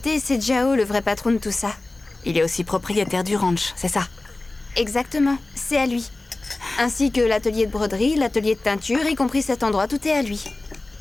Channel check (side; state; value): right; quieter; 3.0 dB